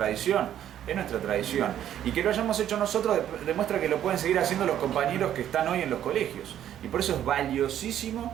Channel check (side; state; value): left; quieter; 10.9 dB